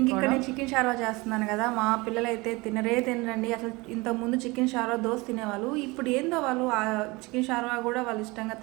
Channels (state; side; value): quieter; left; 24.0 dB